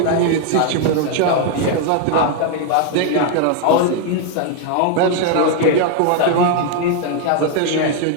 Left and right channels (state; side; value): different; both; correlation 0.00